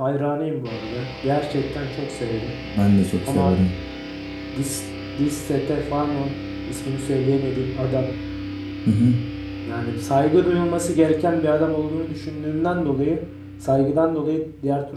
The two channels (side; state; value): both; identical; correlation 1.00